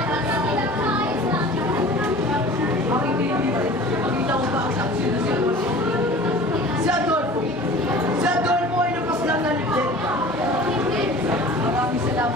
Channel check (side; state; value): both; normal; correlation 0.42